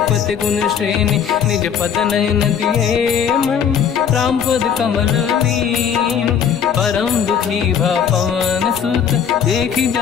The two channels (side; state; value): right; quieter; 7.9 dB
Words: गुण श्रेणी। निज पद नयन दिए मन, राम पद कमल लीन। परम दुखी भा पवन सुत, देखी